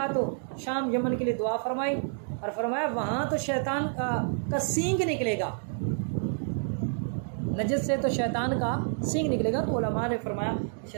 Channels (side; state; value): left; silent; digital silence